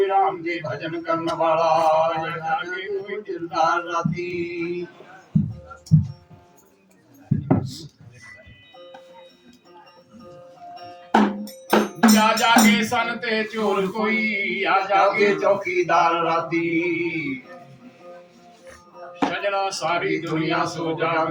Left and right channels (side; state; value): both; identical; correlation 1.00